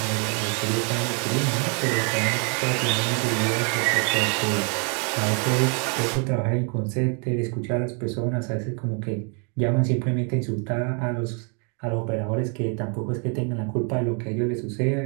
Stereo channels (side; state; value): left; quieter; 36.6 dB